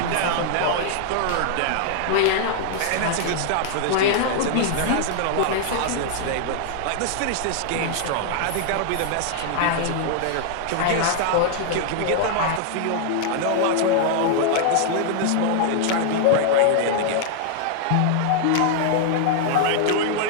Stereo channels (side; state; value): both; different; correlation -0.01